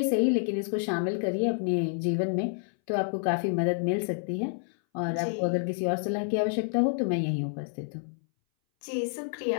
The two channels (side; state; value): right; silent; 59 dB below the other